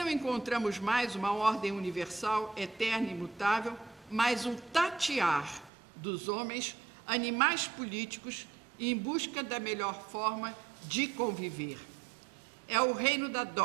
encontramos mais uma ordem universal, eterna e imutável, mas um tatear dos homens, animais políticos, em busca da melhor forma de conviver. É o reino da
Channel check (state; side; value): drops out; left; at 5.7 s